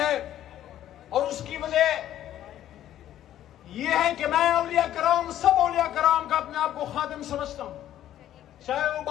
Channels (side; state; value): right; quieter; 12.1 dB